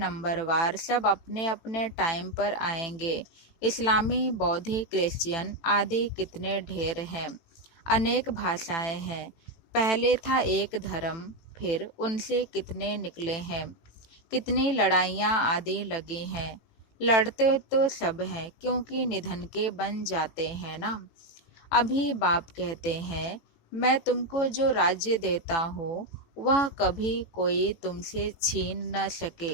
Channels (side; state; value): right; late; 18 ms